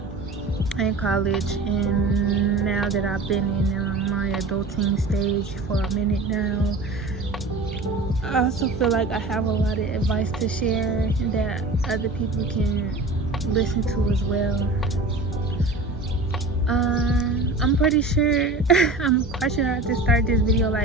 and college, and now that I've been in my adulting stage for a minute now, I also feel like I have a lot of advice to share that other people can listen to as well. I'm pretty sure, I'm quite sure I just started this video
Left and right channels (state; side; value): quieter; left; 3.2 dB